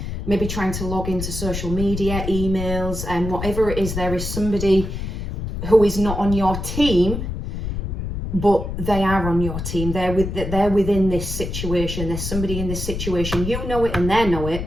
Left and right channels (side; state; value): left; noise; rumble, 5 dB below the sound